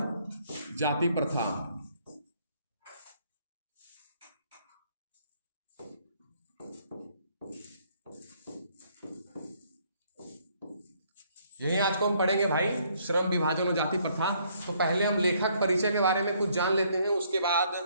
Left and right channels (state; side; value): inverted; both; correlation -0.66